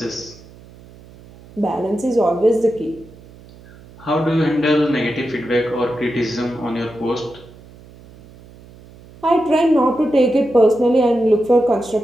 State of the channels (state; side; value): noise; right; hum, 22 dB below the sound